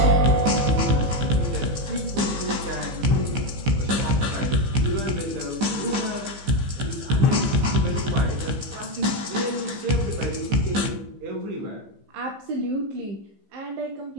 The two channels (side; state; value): left; late; 15 ms